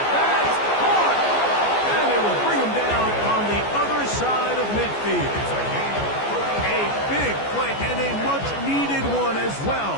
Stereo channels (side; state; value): right; late; 14 ms